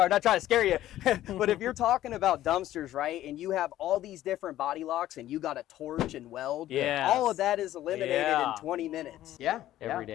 I'm not trying to scare you, but if you're talking about dumpsters, right, and you have all these different body locks and you got to torch and weld, all of that is eliminated in 20 minutes. Yeah. Every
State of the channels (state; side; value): quieter; right; 13.6 dB